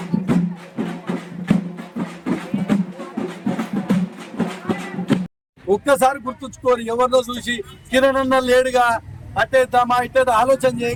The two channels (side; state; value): both; identical; correlation 1.00